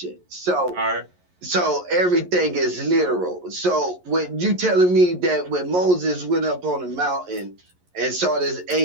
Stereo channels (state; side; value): late; left; 11 ms